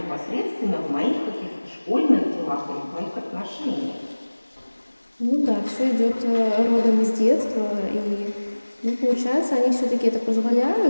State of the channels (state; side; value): inverted; both; correlation -1.00